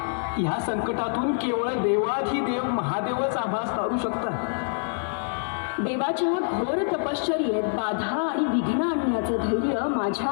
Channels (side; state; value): right; silent; digital silence